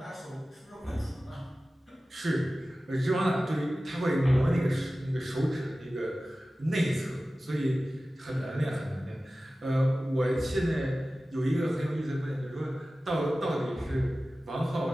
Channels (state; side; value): normal; both; correlation 0.96